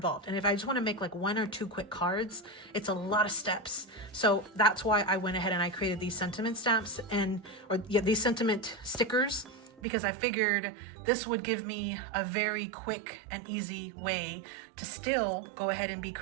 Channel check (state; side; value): drops out; left; at 9.8 s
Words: And if I just want to make like 1 or 2 quick cards, it's a lot of steps. So that's why I went ahead and I created these sentiment stamps these sentiment stickers, because I figured this would give me a very quick and easy way to still go ahead and be